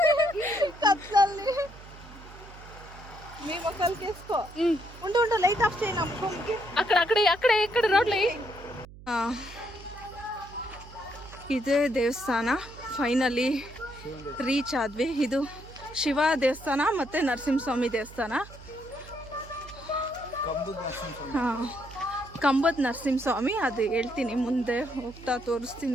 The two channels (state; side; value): noise; right; hum, 18 dB below the sound